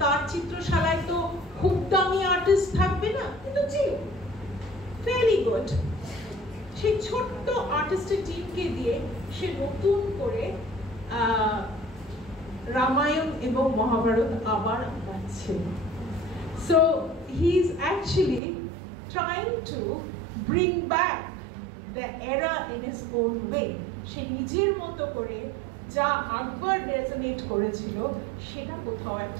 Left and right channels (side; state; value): left; drops out; at 18.4 s